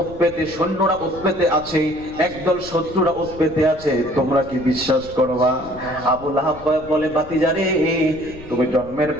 উৎপেতে সৈন্যরা উৎপেতে আছে, একদল শত্রুরা উৎপেতে আছে, তোমরা কি বিশ্বাস করবা? আবু লাহাব বলে, ভাতিজারে তুমি জন্মের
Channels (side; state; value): left; noise; rumble, 17 dB below the sound